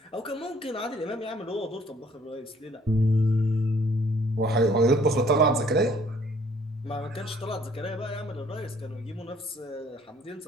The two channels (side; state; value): both; normal; correlation 0.61